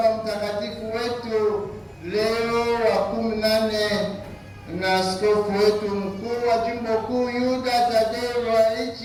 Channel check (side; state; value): both; identical; correlation 1.00